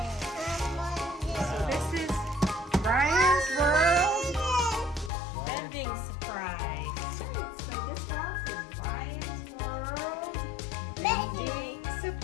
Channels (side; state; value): right; drops out; at 5.1 s